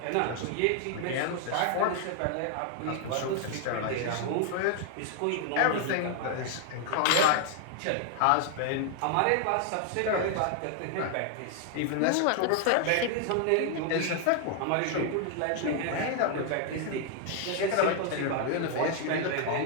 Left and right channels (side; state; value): both; different; correlation 0.00